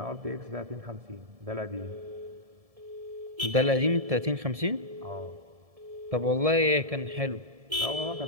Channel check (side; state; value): left; late; 1.7 ms